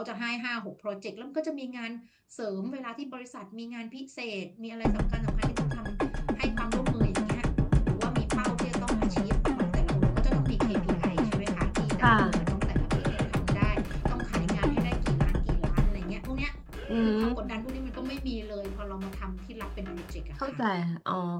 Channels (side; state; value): both; identical; correlation 1.00